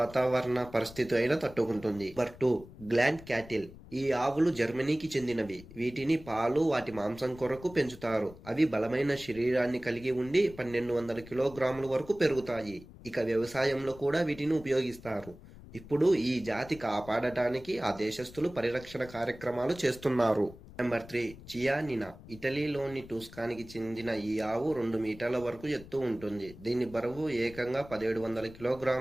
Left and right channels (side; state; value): left; noise; rumble, 18 dB below the sound